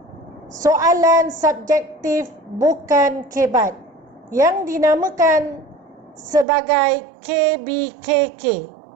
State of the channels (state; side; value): drops out; left; at 6.5 s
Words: soalan subjektif bukan kebat yang dinamakan sebagai KBKK.